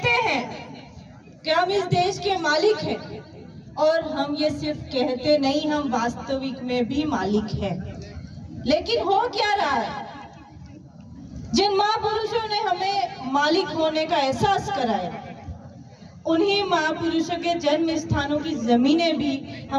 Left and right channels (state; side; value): identical; both; correlation 1.00